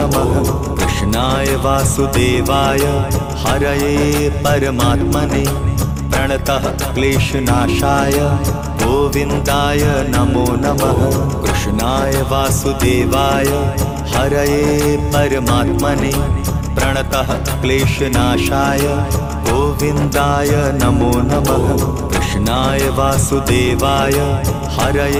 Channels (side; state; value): both; identical; correlation 1.00